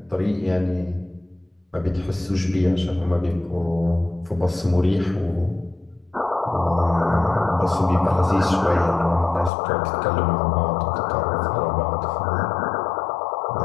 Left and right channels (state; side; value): drops out; right; at 9.5 s